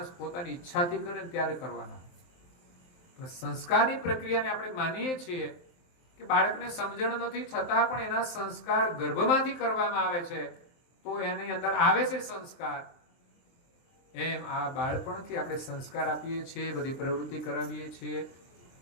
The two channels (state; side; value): late; right; 23 ms